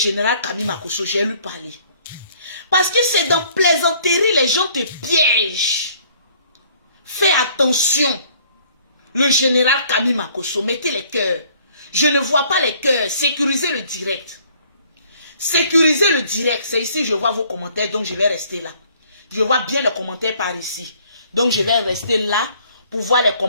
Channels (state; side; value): inverted; both; correlation -0.59